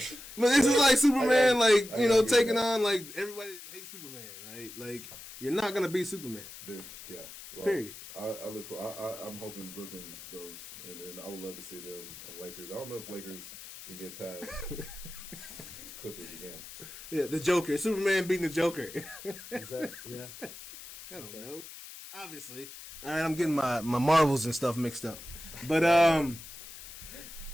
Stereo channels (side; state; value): left; noise; hiss, 14 dB below the sound